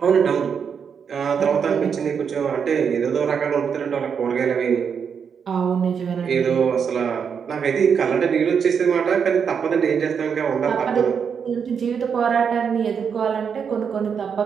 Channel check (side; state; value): left; quieter; 6.8 dB